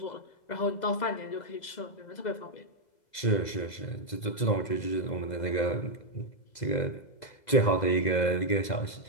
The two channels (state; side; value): late; right; 2.0 ms